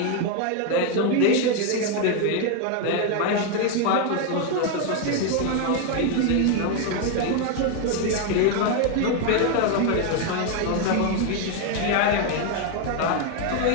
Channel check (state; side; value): different; both; correlation 0.01